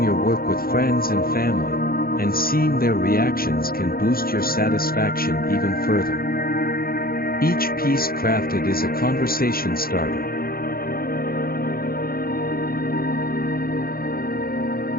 your work with friends and family, and seeing their reactions can boost your satisfaction even further. Each piece crafted is a conversation starter.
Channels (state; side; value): late; right; 0.43 ms